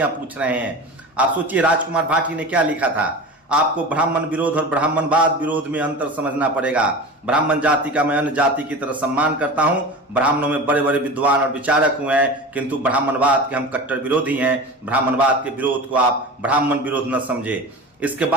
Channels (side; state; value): both; normal; correlation 0.32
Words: पूछ रहे हैं। आप सोचिए, राजकुमार भाटी ने क्या लिखा था, आपको ब्राह्मण विरोध और ब्राह्मणवाद विरोध में अंतर समझना पड़ेगा। ब्राह्मण जाति का मैं अन्य जाति की तरह सम्मान करता हूं। ब्राह्मणों में बड़े बड़े विद्वान और विचारक हुए हैं, किंतु ब्राह्मणवाद के हम कट्टर विरोधी हैं। ब्राह्मणवाद के विरोध को आप ब्राह्मण विरोध न समझे। इसके